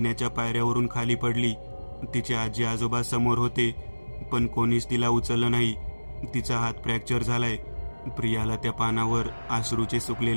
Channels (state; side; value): inverted; both; correlation -1.00